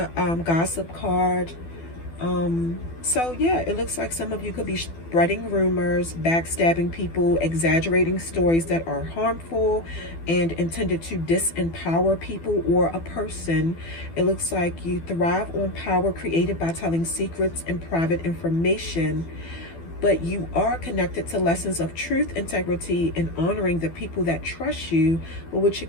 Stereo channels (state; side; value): late; right; 12 ms